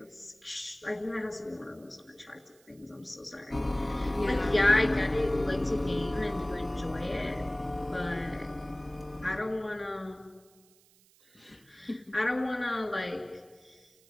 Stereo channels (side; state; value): right; noise; hiss, 29 dB below the sound